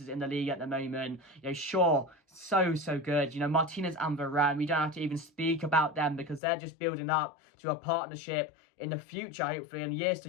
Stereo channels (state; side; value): drops out; right; at 6.4 s